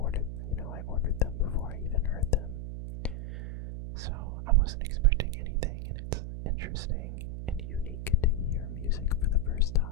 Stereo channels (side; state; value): right; noise; hum, 6 dB below the sound